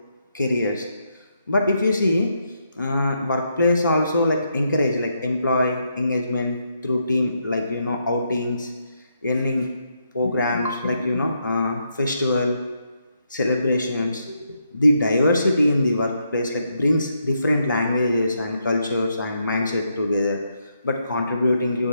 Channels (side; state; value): both; inverted; correlation -0.79